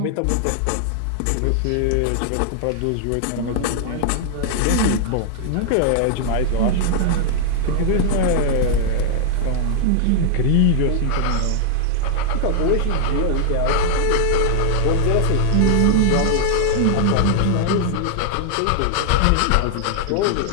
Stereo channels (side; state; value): both; different; correlation 0.00